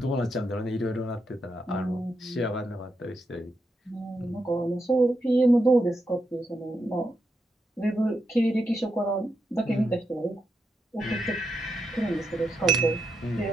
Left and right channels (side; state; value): both; normal; correlation 0.84